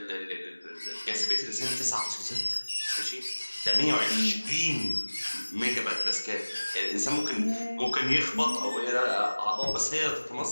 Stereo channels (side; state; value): both; inverted; correlation -1.00